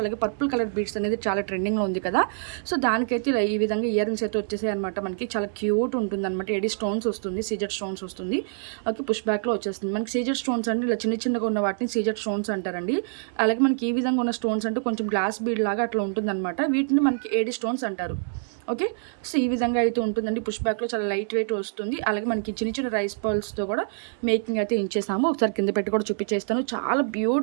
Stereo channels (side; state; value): left; silent; 61 dB below the other